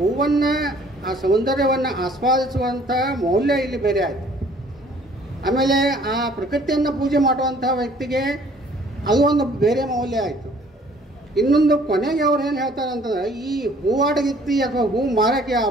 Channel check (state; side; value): normal; both; correlation 0.57